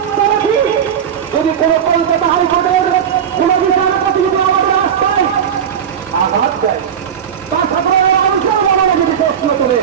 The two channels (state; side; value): quieter; left; 8.4 dB